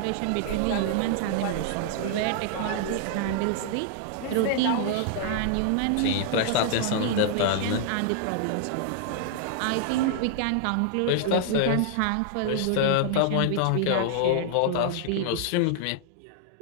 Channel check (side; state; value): both; different; correlation -0.01